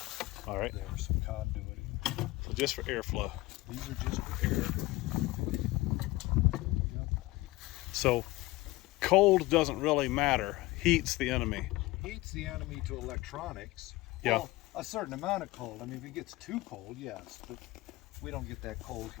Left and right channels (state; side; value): quieter; right; 19.7 dB